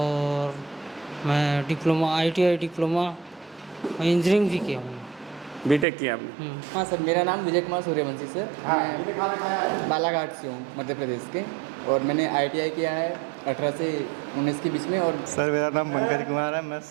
मैं डिप्लोमा ITI डिप्लोमा इंजीनियरिंग भी किया हूँ। बीटेक किया आपने? हाँ सर, मेरा नाम विजय कुमार सूर्यवंशी सर। मैं बालाघाट से हूँ, मध्य प्रदेश के, और मैंने ITI किया है 18 से 19 के बीच में। और सर मेरा नाम पंकज कुमार है। मैं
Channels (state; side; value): drops out; left; at 5.9 s